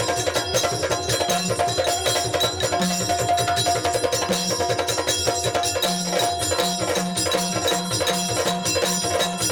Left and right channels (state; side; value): identical; both; correlation 1.00